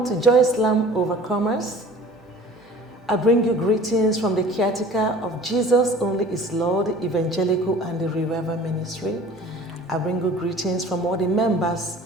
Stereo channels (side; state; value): both; normal; correlation 0.46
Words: to Joycelam Overcomers. I bring you greetings from the caretaker of Jesus Only is Lord, Evangelical and the Revival Ministry. I bring you greetings from all the